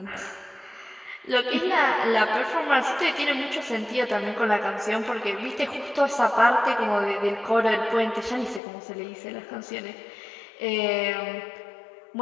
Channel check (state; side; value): drops out; right; at 8.6 s